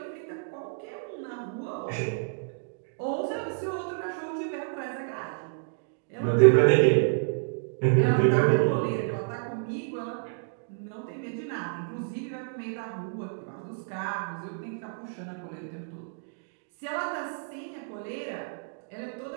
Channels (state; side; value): silent; left; digital silence